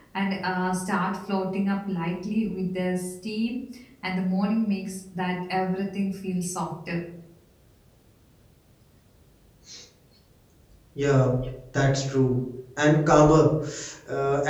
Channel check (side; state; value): both; identical; correlation 1.00